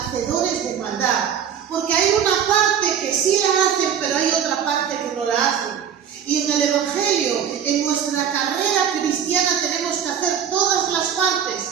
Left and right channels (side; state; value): left; quieter; 8.3 dB